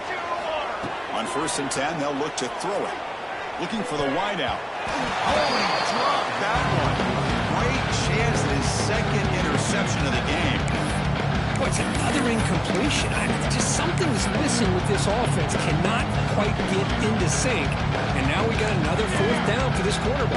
On first and 10, they'll look to throw it. Looking for the wideout. Oh, he dropped that one. Great chance at his second interception of the game. Boy, it's another incompletion. Just something's missing with this offense. Cannot quite get into sync. And now we got another fourth down for this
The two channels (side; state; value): both; identical; correlation 1.00